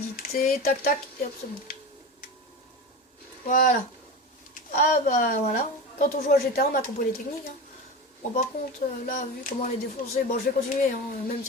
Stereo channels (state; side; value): normal; both; correlation 0.26